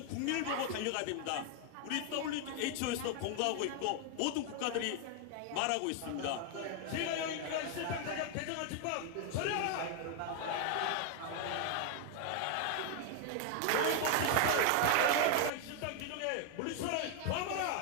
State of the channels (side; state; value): both; different; correlation 0.00